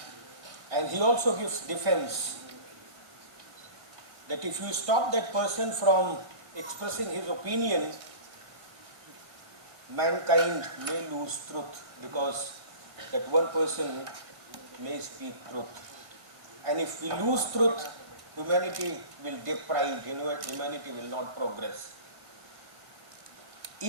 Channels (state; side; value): late; left; 1.6 ms